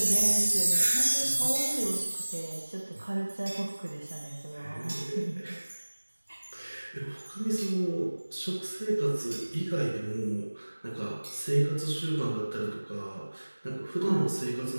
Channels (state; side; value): inverted; both; correlation -1.00